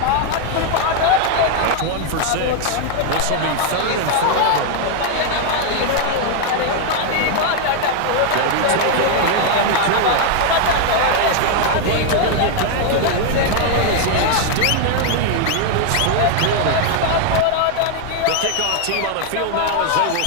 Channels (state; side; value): different; both; correlation 0.00